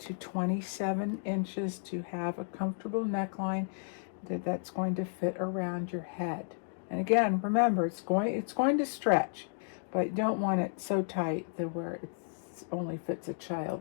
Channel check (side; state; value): right; silent; digital silence